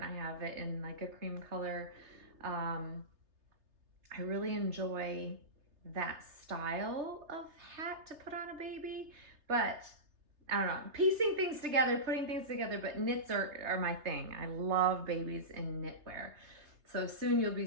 I have it in like a cream color. I really enjoy that style of hat to put on a baby, but I don't know, piecing things together, putting things together, but knits are my thing. I love babies in knitwear. So soon you'll be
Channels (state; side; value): late; left; 3.3 ms